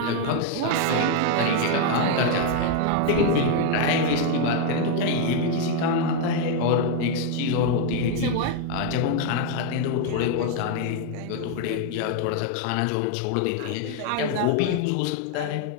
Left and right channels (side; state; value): both; different; correlation 0.01